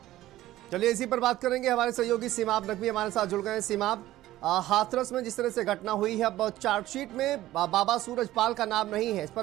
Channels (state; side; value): quieter; left; 15.2 dB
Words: चलिए इसी पर बात करेंगे। हमारे सहयोगी सीमाब नकवी हमारे साथ जुड़ गए हैं। सीमाब, हाथरस में जिस तरह से घटना हुई है, अब चार्जशीट में बाबा सूरजपाल का नाम नहीं है, इस